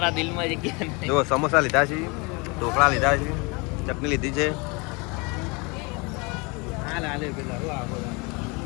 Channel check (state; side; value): quieter; right; 28.9 dB